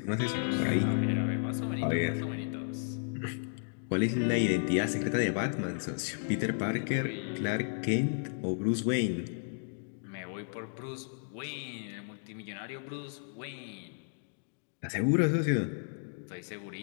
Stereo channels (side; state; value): right; silent; digital silence